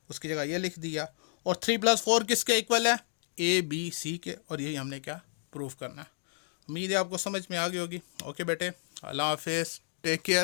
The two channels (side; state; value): right; silent; digital silence